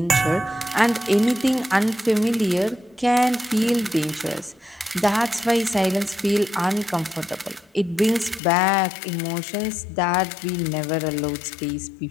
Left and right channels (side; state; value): right; drops out; at 8.4 s